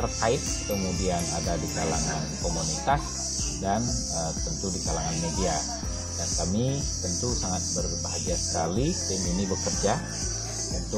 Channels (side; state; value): both; identical; correlation 1.00